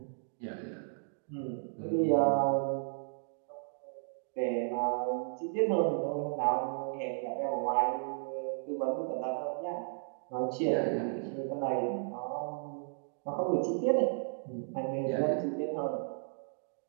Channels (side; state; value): left; silent; digital silence